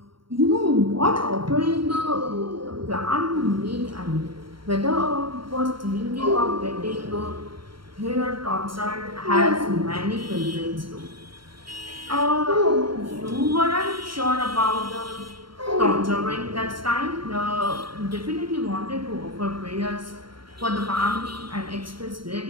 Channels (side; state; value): left; late; 0.73 ms